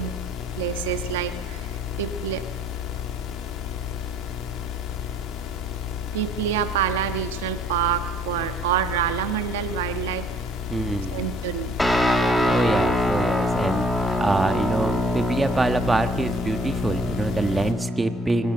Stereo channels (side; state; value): both; normal; correlation 0.59